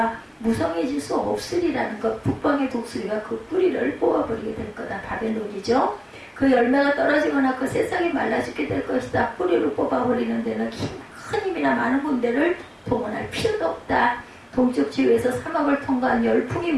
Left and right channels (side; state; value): both; identical; correlation 1.00